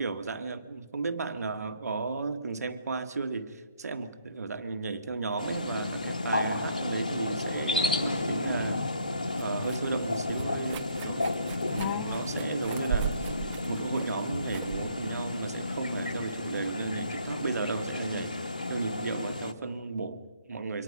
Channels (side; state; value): both; inverted; correlation -0.66